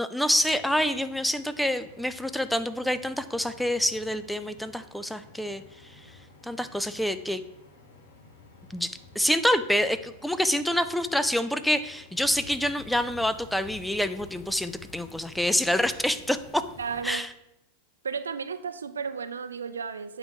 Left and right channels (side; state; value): both; normal; correlation 0.83